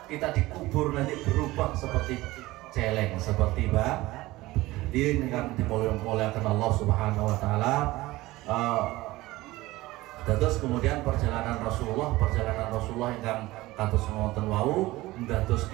kita dikubur nanti berubah seperti celeng, seperti ini kan dimuliakan Allah Subhanahu wa taala. Terus kemudian perjalanan Rasulullah yang kados ngoten wau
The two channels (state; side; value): quieter; left; 18.7 dB